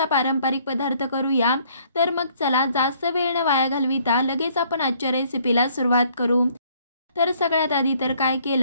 पारंपरिक पदार्थ करूया। तर मग चला जास्त वेळ न वाया घालविता लगेच आपण आजच्या रेसिपीला सुरुवात करू। तर सगळ्यात आधी तर काय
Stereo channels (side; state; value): both; inverted; correlation -0.63